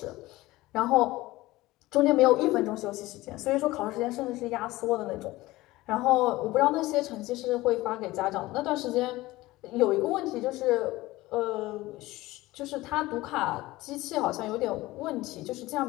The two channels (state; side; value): quieter; right; 18.6 dB